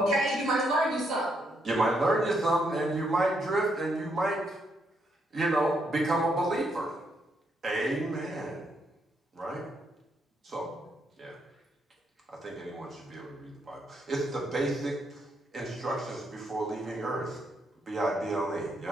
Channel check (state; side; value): normal; both; correlation 0.76